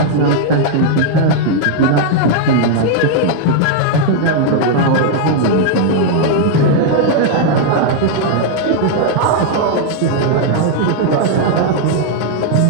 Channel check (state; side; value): different; both; correlation 0.00